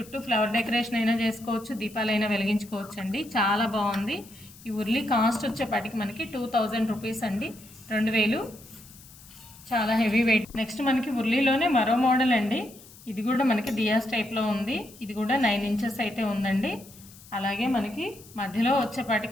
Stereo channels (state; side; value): noise; left; hiss, 21 dB below the sound